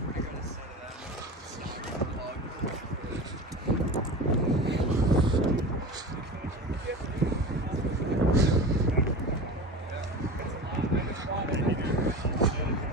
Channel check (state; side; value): normal; both; correlation 0.31